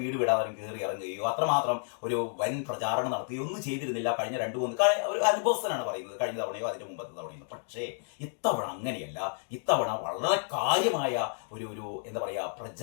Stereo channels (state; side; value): silent; right; 57 dB below the other